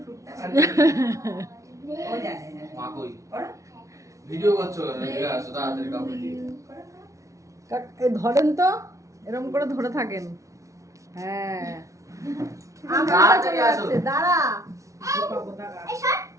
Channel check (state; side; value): late; left; 0.15 ms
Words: শুটটা ও জানে না মা কই পড়ো ভিডিও করছো এদিকে আসো তাড়াতাড়ি কাউকে দিয়ে এই ধরেন তো এরকম করে ধরে থাকেন হ্যাঁ আমার কাছে চলে আসছে দাঁড়া